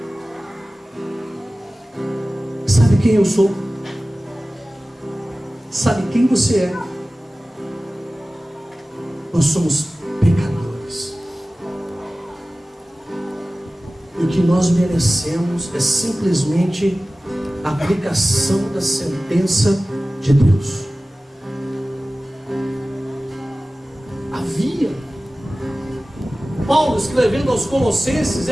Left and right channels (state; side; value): normal; both; correlation 0.97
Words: Sabe quem eu sou? Sabe quem você é? Nós somos pecadores. E o que nós merecemos é simplesmente a aplicação da sentença de Deus. Havia. Paulo, escrevendo aos Colossenses,